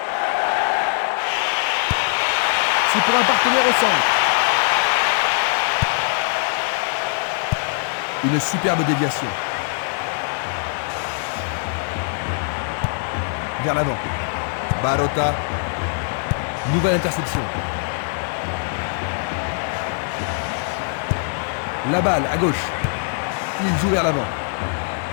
C'est pour un partenaire au centre. Une superbe déviation. Vers l'avant. Barota. Nouvelle interception. La balle à gauche. Il joue vers l'avant.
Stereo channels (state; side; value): silent; right; digital silence